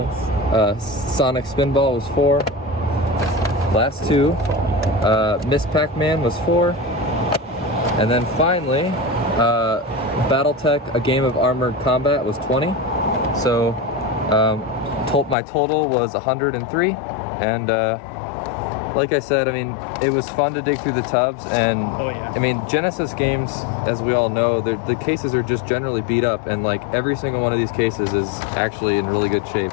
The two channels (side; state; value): right; drops out; at 15.4 s